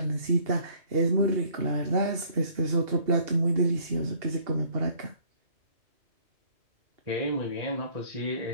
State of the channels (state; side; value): late; left; 2.7 ms